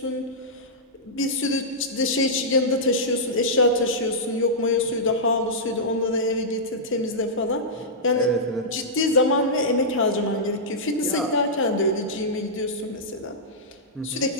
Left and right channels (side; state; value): both; normal; correlation -0.11